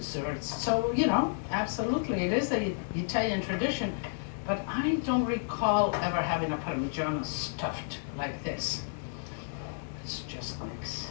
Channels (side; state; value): right; silent; digital silence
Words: So, you know, absolutely, it is the Italian tradition, but I don't recall ever having a Parmigiano stuffed like this. Let's just mix.